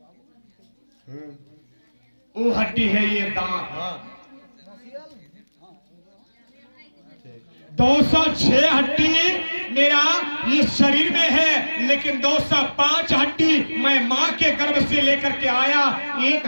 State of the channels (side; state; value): both; inverted; correlation -1.00